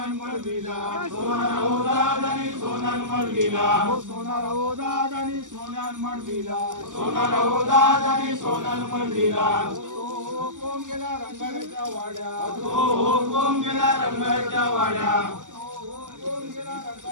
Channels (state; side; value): late; left; 0.87 ms